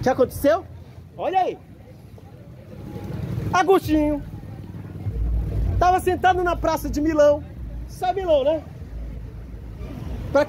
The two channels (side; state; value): both; identical; correlation 1.00